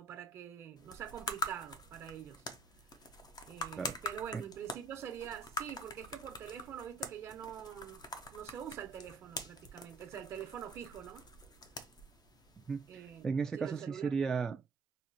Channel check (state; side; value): quieter; left; 3.6 dB